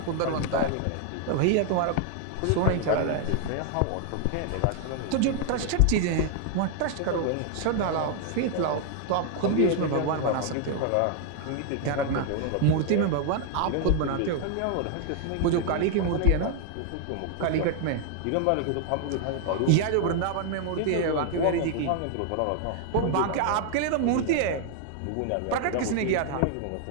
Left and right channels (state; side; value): different; both; correlation 0.00